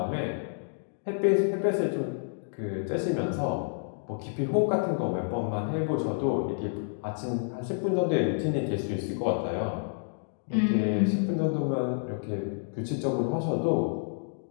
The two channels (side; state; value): right; silent; digital silence